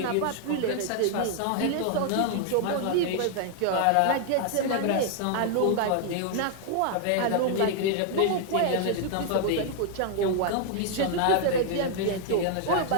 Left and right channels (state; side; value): different; both; correlation 0.00